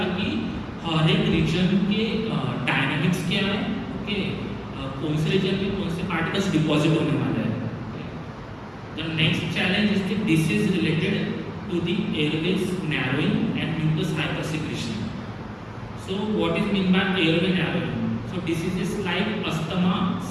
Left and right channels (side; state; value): both; identical; correlation 1.00